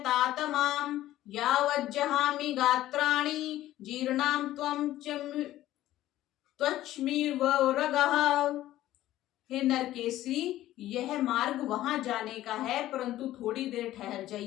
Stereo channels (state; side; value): quieter; right; 14.4 dB